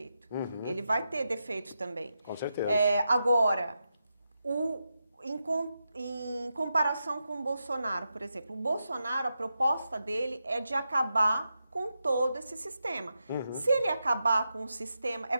Ele vai ter defeitos também. Com certeza. Agora, em comparação com o Bolsonaro, por exemplo, o Bolsonaro, a proposta dele é de acabar com todo esse sistema. Se ele acabar com o sistema, é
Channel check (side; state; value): both; inverted; correlation -0.87